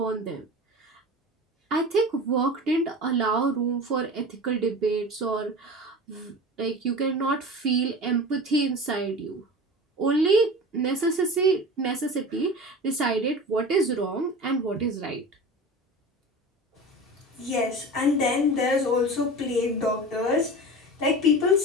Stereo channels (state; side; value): normal; both; correlation 0.33